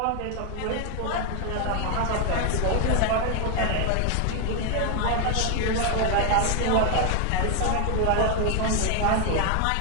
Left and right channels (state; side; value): different; both; correlation 0.01